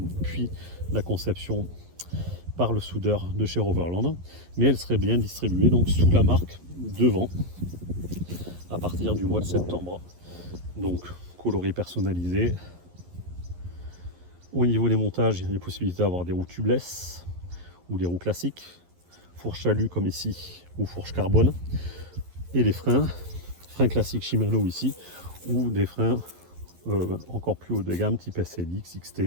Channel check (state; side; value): late; left; 11 ms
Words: puis la conception par le soudeur de chez Roverland, mais elle serait bien distribuée donc sous la marque Devant à partir du mois de septembre. Donc coloré personnalisé. Au niveau des montages, il y a les possibilités d'avoir des roues tubeless ou des roues classiques, fourche alu comme ici ou fourche carbone, et les freins classiques Shimano ici, ou des freins encore plus haut de gamme type SLX, XT,